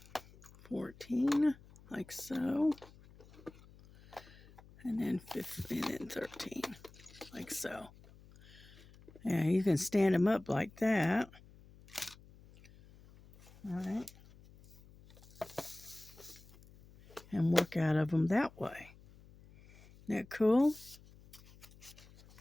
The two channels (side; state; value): left; noise; hum, 23 dB below the sound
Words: 14. Like so. And then 15. And then 13. Like so. Yeah, you can stand them up like that. All right. And work out of them that way. Isn't that cool?